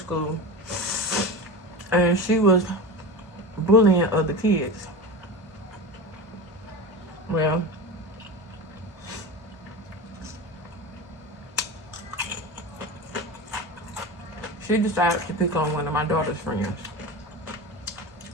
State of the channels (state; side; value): normal; both; correlation 0.27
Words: and she was bullying other kids. Well, she decided to pick on one of my daughter's friends,